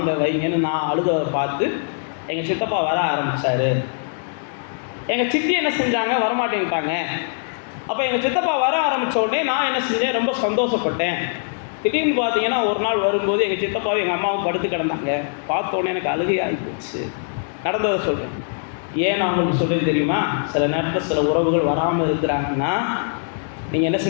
வைங்கன்னு நான் அழுதவரை பார்த்து எங்கள் சித்தப்பா வர ஆரம்பித்தார். எங்கள் சித்தி என்ன செஞ்சாங்க, வரமாட்டேன்ட்டாங்க. அப்போ எங்கள் சித்தப்பா வர ஆரம்பித்த உடனே நான் என்ன செஞ்சேன், ரொம்ப சந்தோஷப்பட்டேன். திடீர்னு பார்த்தீங்கன்னா ஒரு நாள் வரும்போது எங்கள் சித்தப்பாவும் எங்கள் அம்மாவும் படுத்து கிடந்தாங்க. பார்த்த உடனே எனக்கு அழுகை ஆகி போச்சு. நடந்ததை சொல்கிறேன். ஏன் நான் உங்களுக்கு சொல்கிறேன் தெரியுமா, சில நேரத்தில் சில உறவுகள் வராமல் இருக்கிறாங்கன்னா நீங்கள் என்ன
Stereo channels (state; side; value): silent; right; digital silence